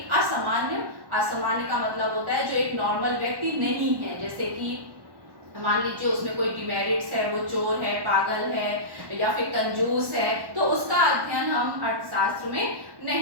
असामान्य का मतलब होता है जो एक नॉर्मल व्यक्ति नहीं है, जैसे कि मान लीजिए उसमें कोई डिमेरिट्स है, वो चोर है, पागल है या फिर कंजूस है, तो उसका अध्ययन हम अर्थशास्त्र में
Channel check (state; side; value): late; left; 1.1 ms